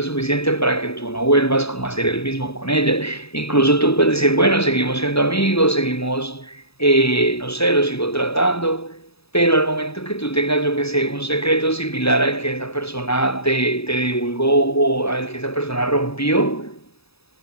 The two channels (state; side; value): late; right; 0.78 ms